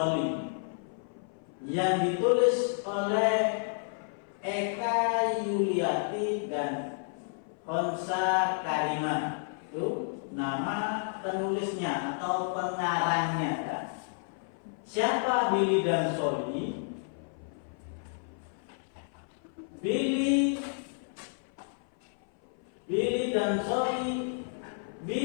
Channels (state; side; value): silent; right; 55 dB below the other